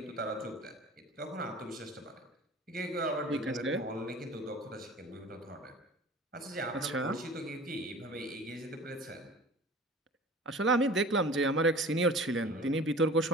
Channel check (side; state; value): both; normal; correlation 0.42